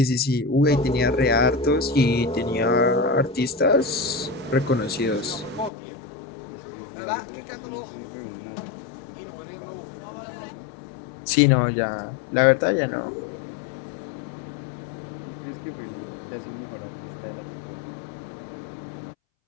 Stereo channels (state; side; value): drops out; right; at 5.7 s